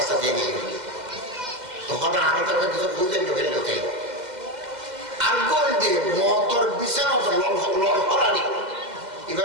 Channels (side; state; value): left; late; 2.1 ms